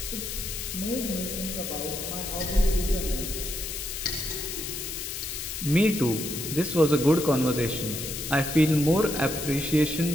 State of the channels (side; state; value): left; noise; hiss, 6 dB below the sound